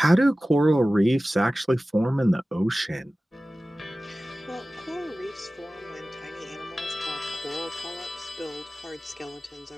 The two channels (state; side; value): normal; both; correlation 0.97